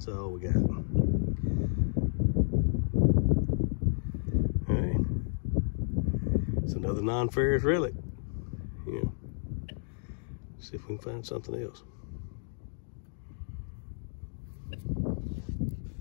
all we got. All right. It's another non-ferrous relic. Yeah. See if we can find something else.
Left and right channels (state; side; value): silent; right; digital silence